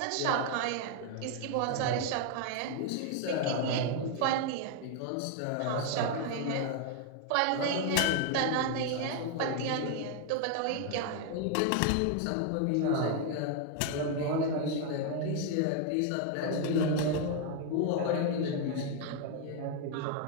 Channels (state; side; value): different; both; correlation 0.00